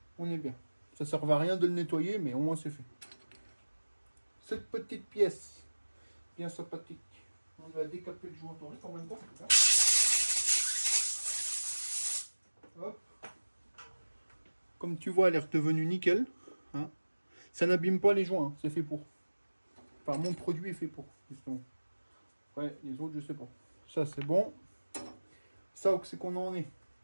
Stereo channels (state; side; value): inverted; both; correlation -1.00